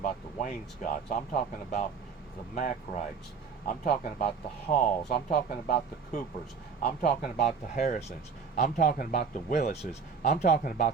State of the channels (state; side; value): quieter; left; 5.7 dB